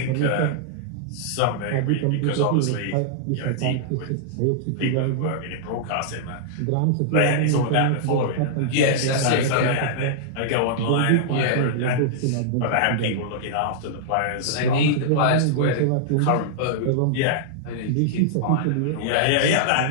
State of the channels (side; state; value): both; different; correlation -0.02